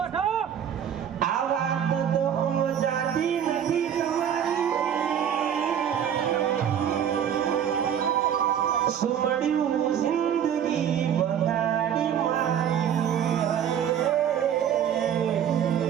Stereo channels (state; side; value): quieter; left; 9.1 dB